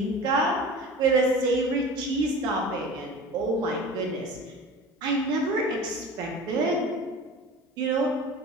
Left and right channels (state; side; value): normal; both; correlation 0.37